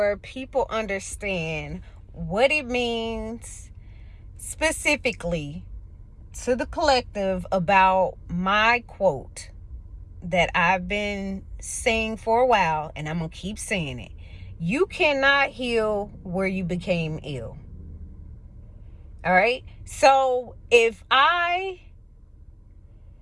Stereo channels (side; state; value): both; identical; correlation 1.00